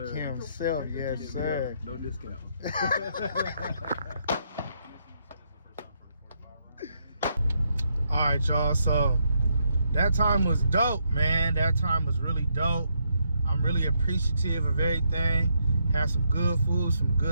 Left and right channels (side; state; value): both; inverted; correlation -0.77